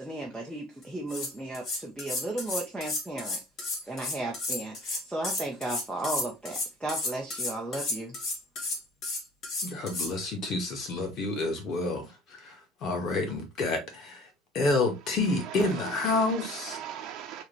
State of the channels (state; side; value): normal; both; correlation 0.51